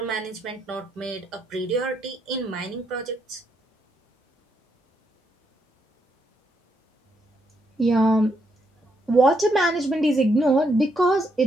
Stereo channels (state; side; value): normal; both; correlation 0.77